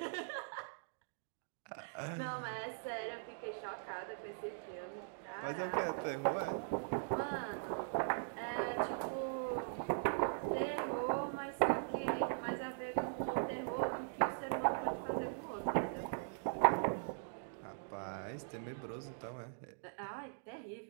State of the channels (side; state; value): left; silent; digital silence